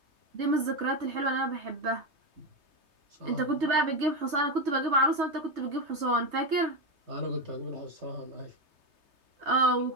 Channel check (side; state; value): left; late; 3.2 ms